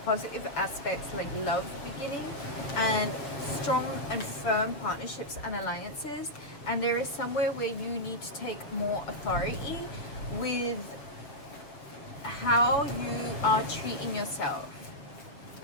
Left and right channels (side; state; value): right; late; 6.8 ms